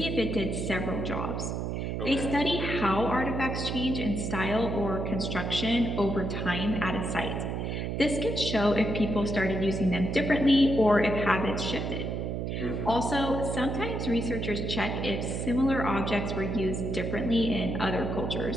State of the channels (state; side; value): noise; right; hum, 2 dB below the sound